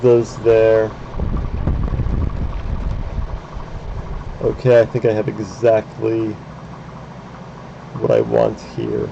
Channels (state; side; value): identical; both; correlation 1.00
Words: there. Okay, I think I have exactly what I want here.